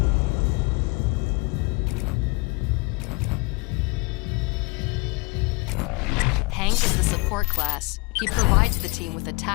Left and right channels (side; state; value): right; quieter; 27.0 dB